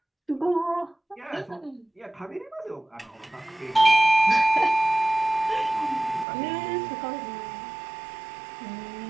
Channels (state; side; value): drops out; left; at 6.2 s